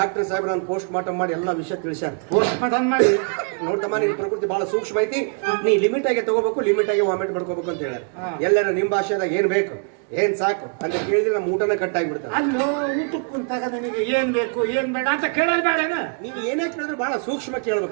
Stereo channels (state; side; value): quieter; left; 39.7 dB